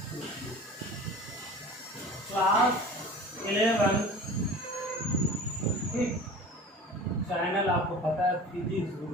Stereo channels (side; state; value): both; normal; correlation 0.39